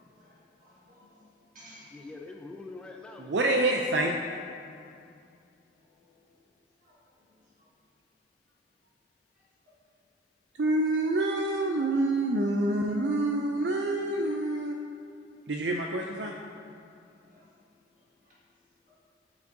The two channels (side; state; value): both; normal; correlation 0.36